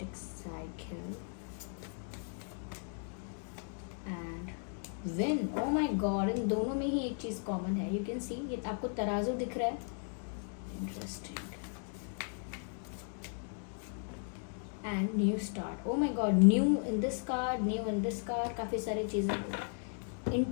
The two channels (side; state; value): right; silent; 54 dB below the other